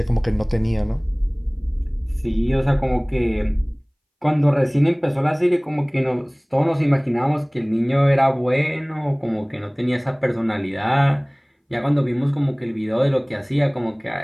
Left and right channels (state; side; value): identical; both; correlation 1.00